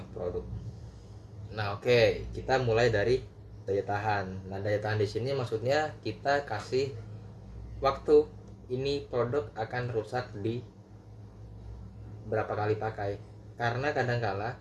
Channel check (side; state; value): both; identical; correlation 1.00